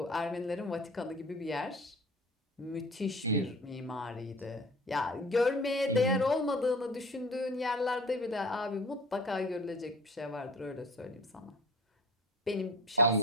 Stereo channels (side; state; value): both; normal; correlation 0.42